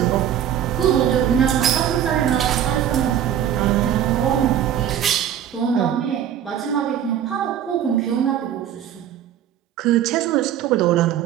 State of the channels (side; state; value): left; quieter; 10.0 dB